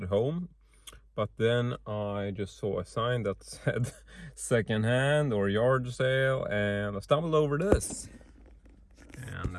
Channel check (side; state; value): both; identical; correlation 1.00